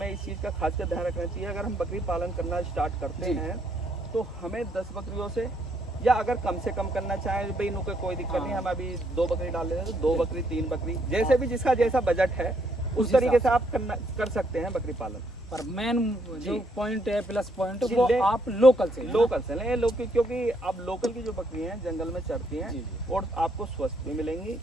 इस चीज़ का खास कर ध्यान रखना चाहिए। अगर हम बकरी पालन करना स्टार्ट करते हैं तो हमें 10 बकरियों से, या अगर कम से कम करना चाहें भाई नो कोई दिक्कत नहीं, हम अभी 2 बकरी डाल लेते हैं तो 2 बकरी 3 बकरी, जैसे भी जिसका जैसा बजट है उस तरीके से आप कर सकते हैं बकरी पालन। पर मेन जो पॉइंट है, प्लस पॉइंट, वो आप लोकल से लें, क्योंकि अब लोकल की जो बकरी हैं जंगल में चरती हैं और आपको स्वस्थ भी मिलेंगी,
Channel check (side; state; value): both; normal; correlation 0.72